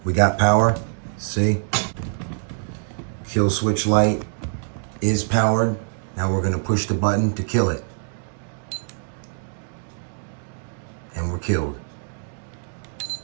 We got power, see? Kill switch light is powered. Now we're going to push the button to kill it. And we're killed.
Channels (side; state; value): left; silent; digital silence